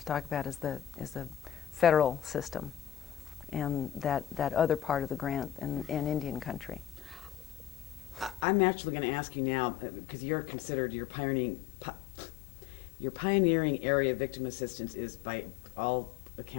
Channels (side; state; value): right; drops out; at 8.5 s